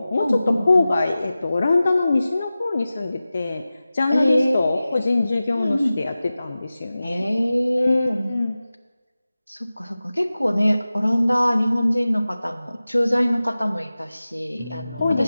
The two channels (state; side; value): inverted; both; correlation -0.96